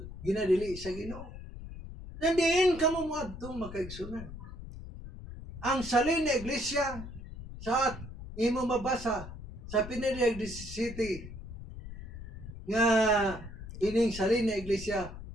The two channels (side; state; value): left; noise; rumble, 12 dB below the sound